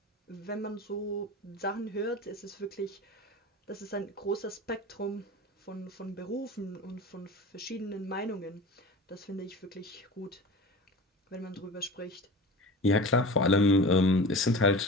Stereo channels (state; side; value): normal; both; correlation 0.35